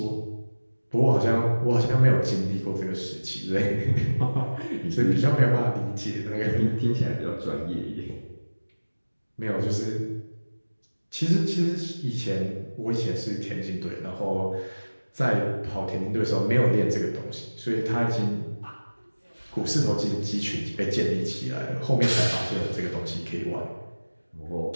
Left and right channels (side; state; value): both; inverted; correlation -1.00